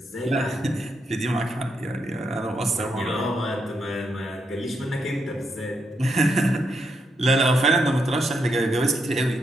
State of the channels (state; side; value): normal; both; correlation 0.80